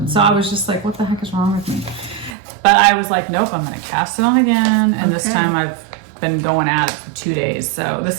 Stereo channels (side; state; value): left; drops out; at 2.4 s